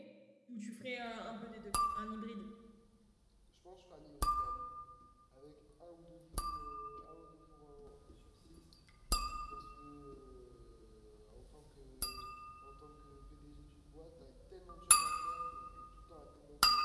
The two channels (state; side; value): identical; both; correlation 1.00